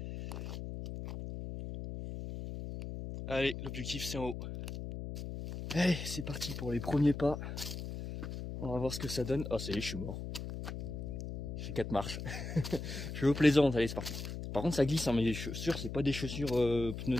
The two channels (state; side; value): noise; left; hum, 7 dB below the sound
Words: Allez, l'objectif c'est en haut. Allez, c'est parti pour les premiers pas. On va voir ce que ça donne. Ah ça y est, je suis mort. Je fais 4 marches. Je suis au plaisant, allez c'est parti. Par contre ça glisse, hein, mais les chaussures c'est pas des chaussures